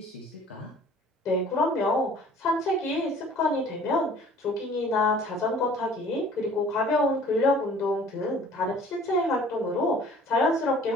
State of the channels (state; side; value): normal; both; correlation 0.50